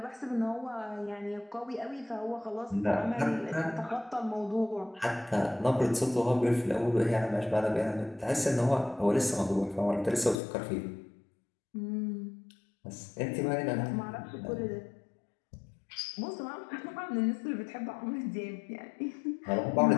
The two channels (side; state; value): right; drops out; at 10.4 s